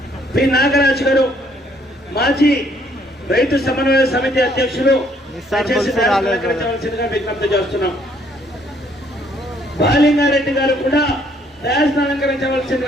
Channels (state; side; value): normal; both; correlation 0.66